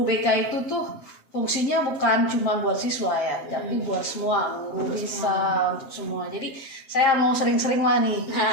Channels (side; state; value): right; late; 7.4 ms